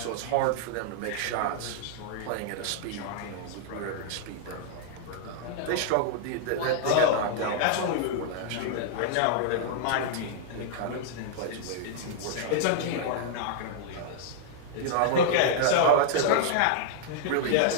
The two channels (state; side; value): different; both; correlation -0.01